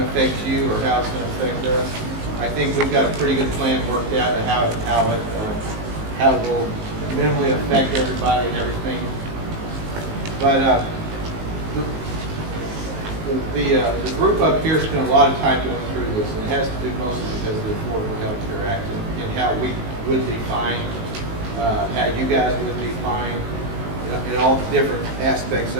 affect you or how it's going to affect us. I think we've got a pretty good plan worked out of how it will minimally affect everybody and everything. But the group up here spent a lot of time going through this, and it has to do mostly because of the Affordable Health Care Act and how we would be fined, how you guys would be fined, in all the different aspects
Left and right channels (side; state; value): left; late; 19 ms